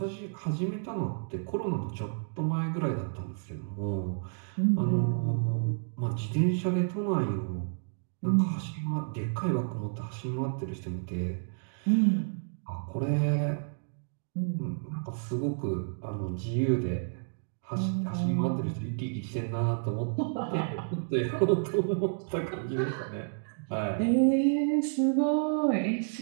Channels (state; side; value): silent; left; digital silence